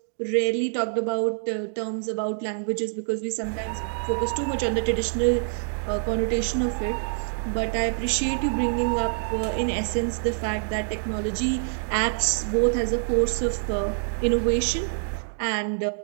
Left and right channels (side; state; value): left; silent; digital silence